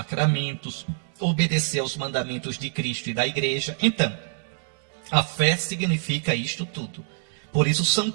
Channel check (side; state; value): left; silent; digital silence